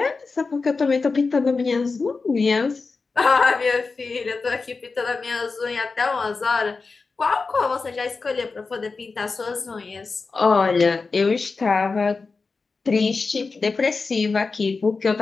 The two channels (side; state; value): right; quieter; 4.3 dB